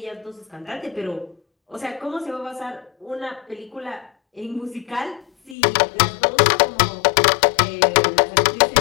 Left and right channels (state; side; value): drops out; right; at 5.6 s